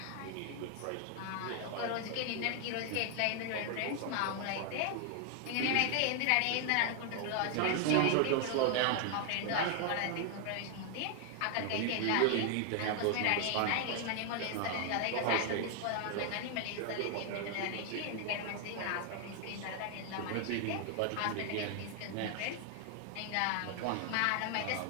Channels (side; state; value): both; different; correlation 0.00